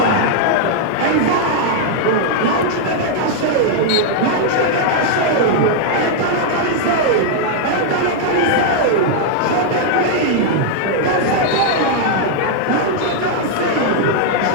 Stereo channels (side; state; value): both; different; correlation -0.01